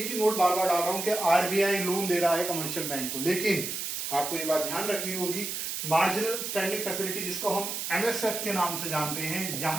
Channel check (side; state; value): right; noise; hiss, 4 dB below the sound